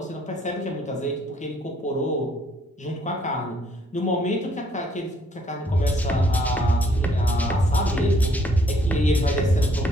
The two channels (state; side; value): normal; both; correlation 0.66